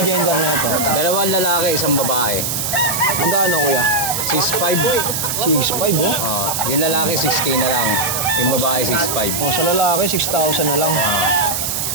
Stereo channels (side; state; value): right; noise; hiss, 1 dB below the sound